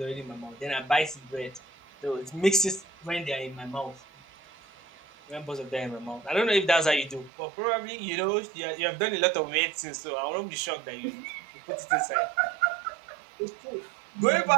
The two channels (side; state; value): left; drops out; at 7.3 s